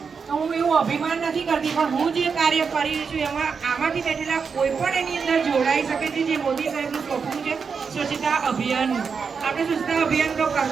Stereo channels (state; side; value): quieter; left; 5.7 dB